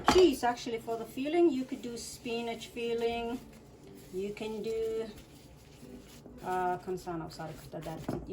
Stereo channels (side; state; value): both; identical; correlation 1.00